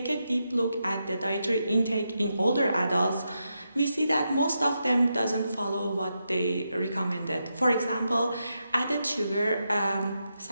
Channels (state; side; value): inverted; both; correlation -0.85